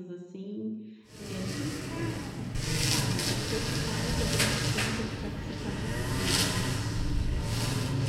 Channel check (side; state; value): both; identical; correlation 1.00